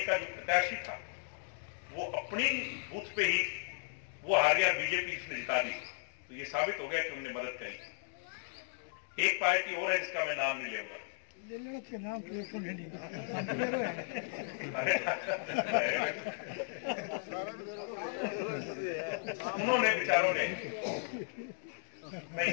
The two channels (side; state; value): right; silent; digital silence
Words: का जो प्रत्याशी था वो अपनी बूथ पे ही वो हार गया, बीजेपी इसने जिता दी। तो ये साबित हो गया कि उन्होंने मदद करी। एक पार्टी और है जिसका मैं नाम नहीं लूंगा, उन्होंने बेचारों ने, मैं